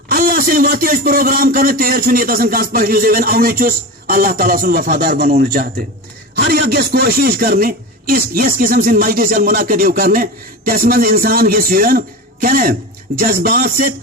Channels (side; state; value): both; normal; correlation 0.26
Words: اللہ سے واتی اس پروگرام کرنے تیر چھنی تسن کانس پہلی زیون اوی چوس اللہ تعالیٰ سن وفادار بنونے چاہتے ہر یک گیس کوشش کرنے اس قسم سے مجلس منعقد کرنے تس من انسان گیس یون کہنے جذبات سے